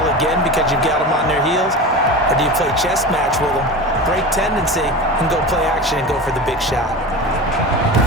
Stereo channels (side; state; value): both; normal; correlation 0.29